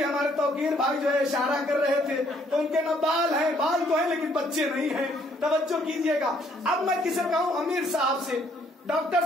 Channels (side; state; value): both; normal; correlation 0.66